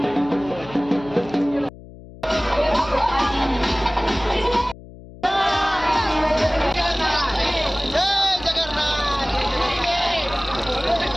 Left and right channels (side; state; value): left; noise; hum, 18 dB below the sound